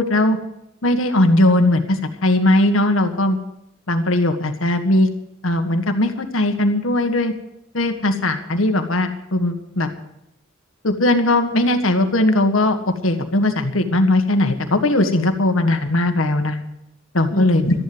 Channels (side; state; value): both; normal; correlation 0.49